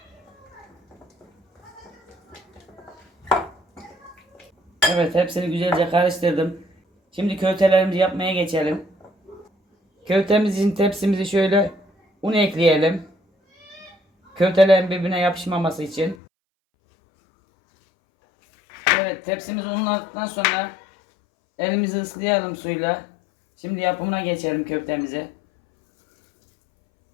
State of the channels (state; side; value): drops out; right; at 16.2 s